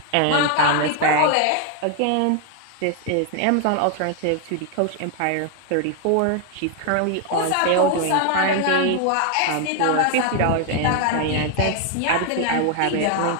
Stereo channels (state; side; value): different; both; correlation 0.00